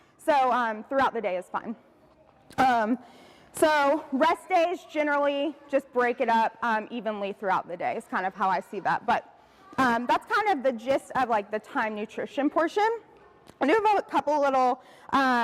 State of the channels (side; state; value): both; identical; correlation 1.00